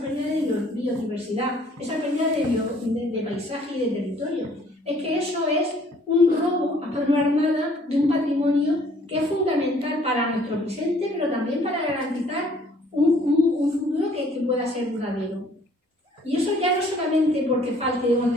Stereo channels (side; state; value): both; normal; correlation 0.59